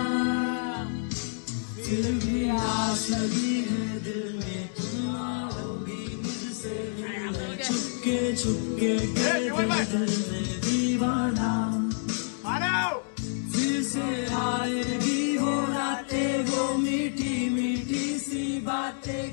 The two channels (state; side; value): silent; right; digital silence